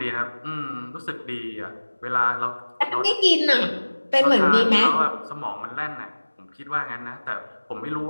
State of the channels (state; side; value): inverted; both; correlation -1.00